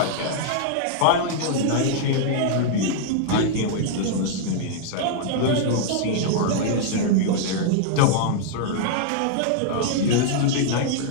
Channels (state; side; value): different; both; correlation -0.01